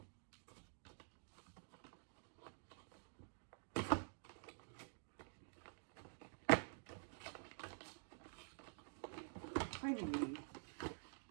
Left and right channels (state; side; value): silent; left; digital silence